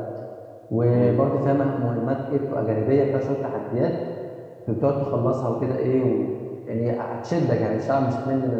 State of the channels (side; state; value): both; identical; correlation 1.00